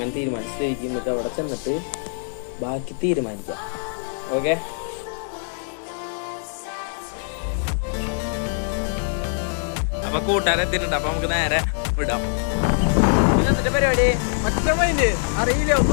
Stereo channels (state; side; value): silent; right; digital silence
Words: തീരുമാനിച്ചിരിക്കും. നമുക്ക് അവിടെ ചെന്നിട്ട് ബാക്കി തീരുമാനിക്കാം. ഓക്കെ, അപ്പൊ കൂട്ടുകാരെ എത്തിയിട്ടുണ്ട്. അപ്പൊ നമുക്ക് നേരെ വിടാം. എന്നിട്ട് പരിപാടി അറിയില്ല,